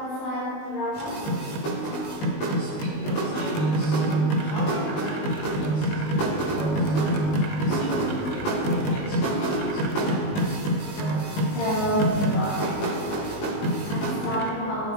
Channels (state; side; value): late; right; 19 ms